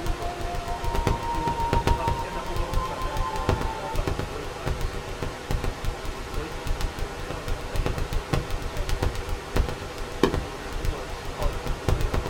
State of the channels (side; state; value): both; identical; correlation 1.00